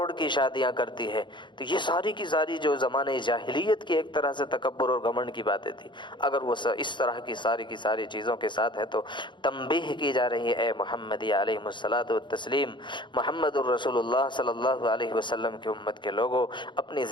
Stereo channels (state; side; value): late; right; 0.23 ms